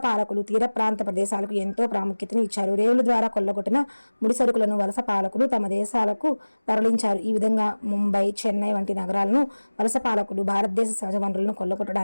పాలకులు తీర ప్రాంత ప్రదేశాలకు ఎంతో ప్రాముఖ్యతను ఇచ్చారు. రేవుల ద్వారా కొల్లగొట్టిన ముడి సరుకులను వలస పాలకులు తమ దేశాలకు తరలించారు. ఈ విధంగా ముంబై, చెన్నై వంటి నగరాలను వలస పాలకులు భారతదేశ సహజ వనరులను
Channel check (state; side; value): inverted; both; correlation -1.00